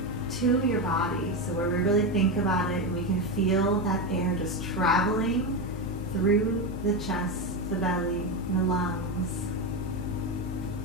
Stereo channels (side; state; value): both; normal; correlation 0.13